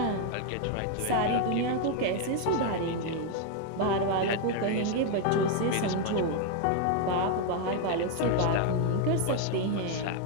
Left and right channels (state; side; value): different; both; correlation 0.01